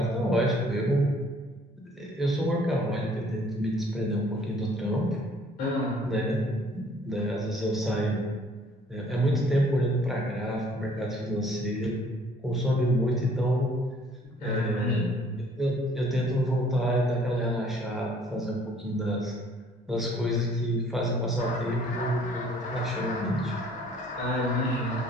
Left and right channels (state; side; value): normal; both; correlation 0.58